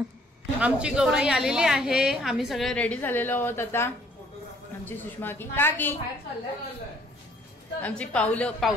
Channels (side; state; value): both; normal; correlation 0.61